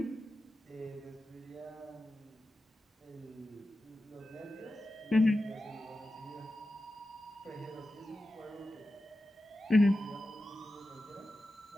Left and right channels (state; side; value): normal; both; correlation 0.92